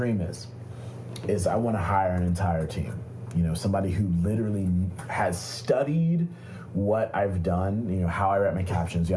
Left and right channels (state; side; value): identical; both; correlation 1.00